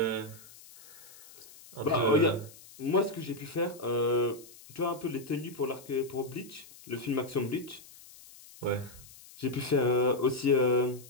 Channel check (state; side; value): noise; left; hiss, 20 dB below the sound